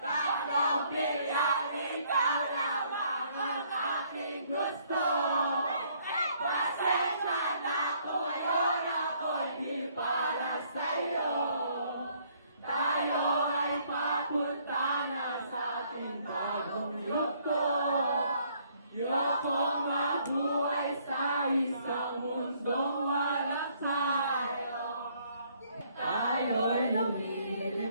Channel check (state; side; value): inverted; both; correlation -0.65